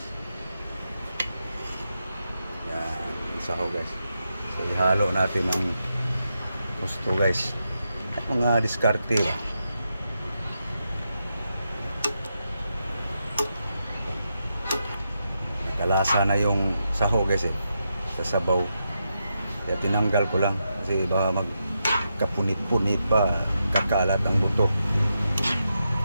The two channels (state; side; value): inverted; both; correlation -0.85